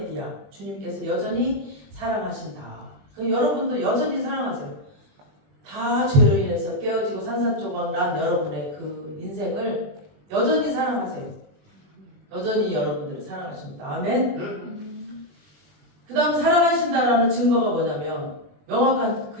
주님께서 여전히 사랑하신다. 여러분도 여전히 사랑하세요. 다 죄로 인해서 깨어지고 산산조각난 여러분의 그 인생을 여전히 사랑하세요. 여전히 여러분들을 사랑하십니다. 아멘. 그 다음 사랑하신다라는 증거가 뭐냐면 명확한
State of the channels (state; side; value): late; left; 21 ms